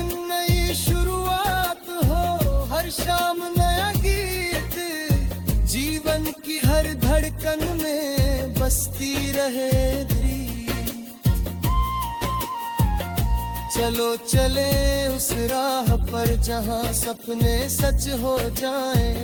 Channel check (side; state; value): both; identical; correlation 1.00